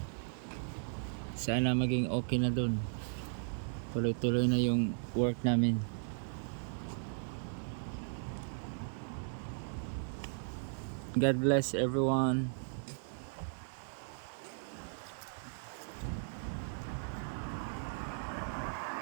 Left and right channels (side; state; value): left; silent; digital silence